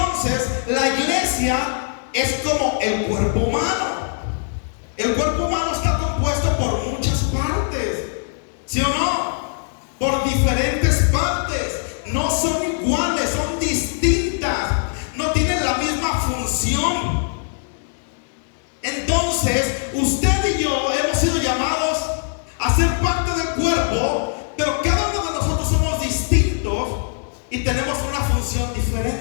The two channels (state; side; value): silent; right; digital silence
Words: la iglesia es como el cuerpo humano. El cuerpo humano está compuesto por muchas partes, ¿sí o no? Por diferentes partes. No son iguales, son distintas. No tienen la misma función. Entonces, usted y yo hemos sido llamados a ser parte del cuerpo, pero cada uno de nosotros somos distintos y tenemos una función